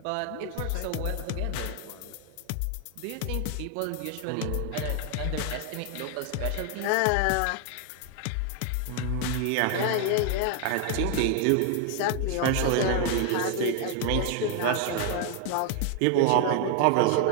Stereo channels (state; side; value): different; both; correlation 0.00